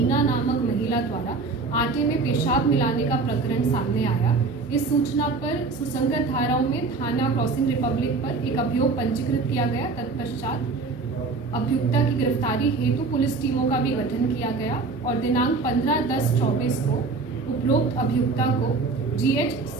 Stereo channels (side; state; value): left; quieter; 4.1 dB